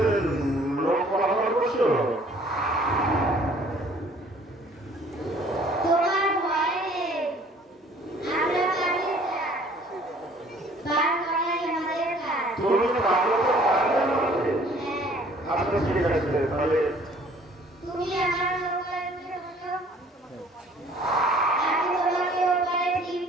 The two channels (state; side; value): normal; both; correlation 0.55